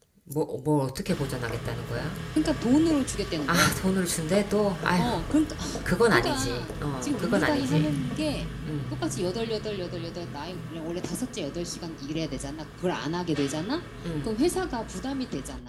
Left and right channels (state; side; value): identical; both; correlation 1.00